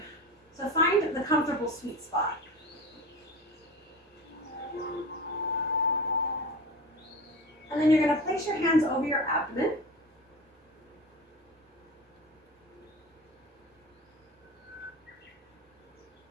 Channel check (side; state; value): both; normal; correlation 0.31